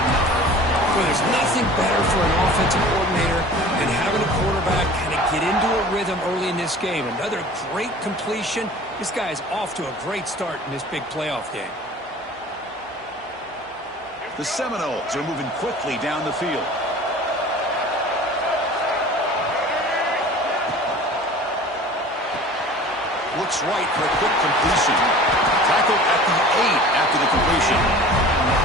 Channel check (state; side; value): normal; both; correlation 0.43